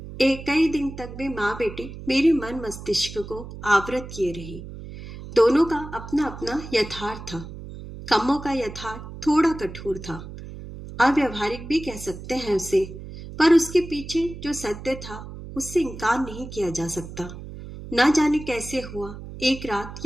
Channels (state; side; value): noise; right; hum, 12 dB below the sound